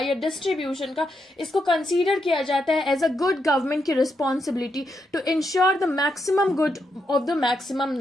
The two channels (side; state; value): both; normal; correlation 0.82